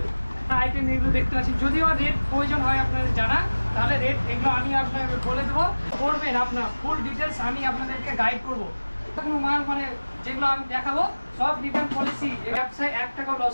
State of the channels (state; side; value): inverted; both; correlation -1.00